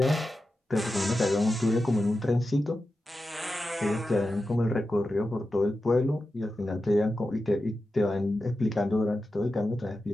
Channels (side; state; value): both; normal; correlation 0.92